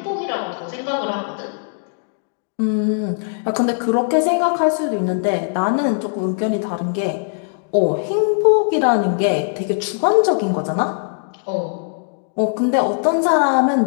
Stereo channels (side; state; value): right; silent; digital silence